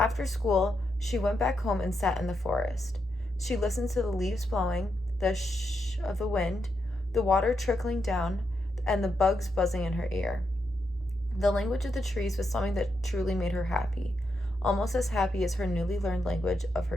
school, She went back home and sat in the forest. She listened to the leaves blowing, the shh of the wind, the water trickling down, and the bugs buzzing in her ear. The language of the trees was something that truly made her happy, almost as happy as her newly learned language of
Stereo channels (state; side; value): normal; both; correlation 0.83